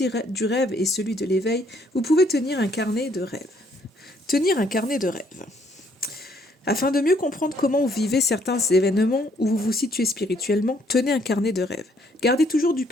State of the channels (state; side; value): normal; both; correlation 0.67